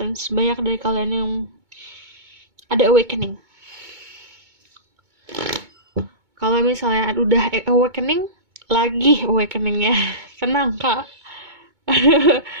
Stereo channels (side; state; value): left; late; 2.2 ms